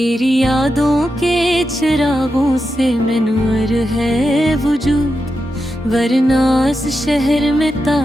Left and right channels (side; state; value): both; normal; correlation 0.88